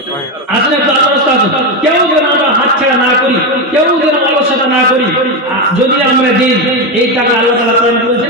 আসলে একটু আল্লাহর রাস্তা আছে কেউ যেন আমরা হাতছাড়া না করি কেউ যেন অলসতা না করি যদি আমরা দিই এই টাকা আল্লাহ তাআলা প্রদান করেছেন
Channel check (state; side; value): normal; both; correlation 0.11